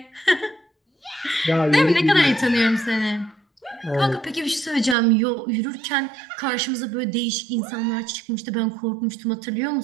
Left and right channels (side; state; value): left; drops out; at 5.0 s